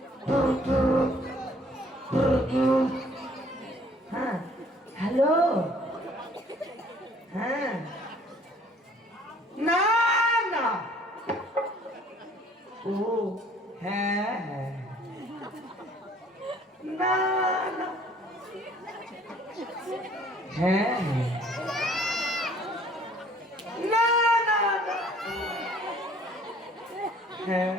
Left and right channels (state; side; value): normal; both; correlation 0.57